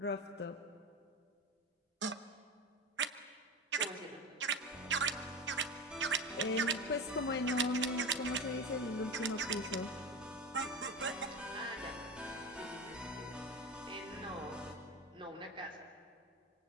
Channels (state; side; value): normal; both; correlation 0.25